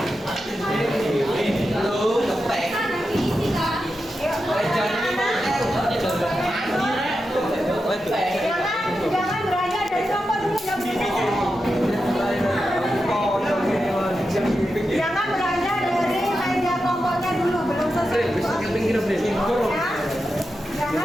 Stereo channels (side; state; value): both; normal; correlation 0.89